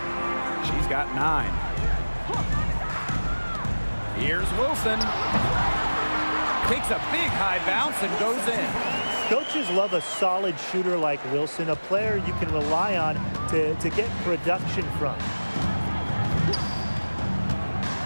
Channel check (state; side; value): inverted; both; correlation -1.00